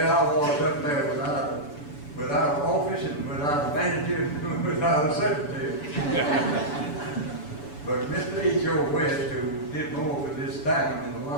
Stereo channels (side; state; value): right; late; 6.9 ms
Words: I was up there without an office and without a manager and without a secretary. But Mr. H.O. West, who did more for this town than a